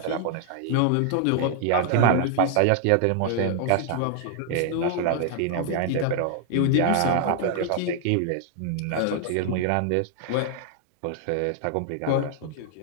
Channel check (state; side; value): different; both; correlation 0.00